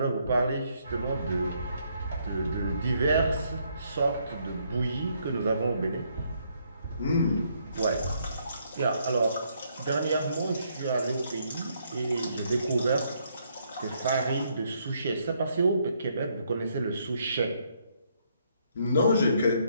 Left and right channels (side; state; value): both; inverted; correlation -0.72